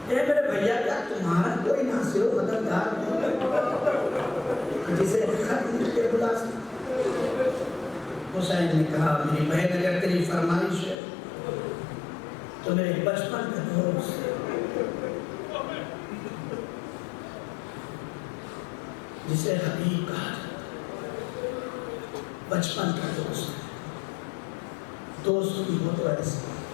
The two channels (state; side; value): drops out; right; at 11.0 s